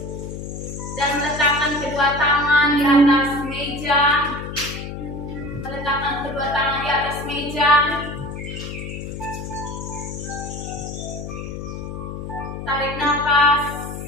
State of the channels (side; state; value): left; noise; hum, 8 dB below the sound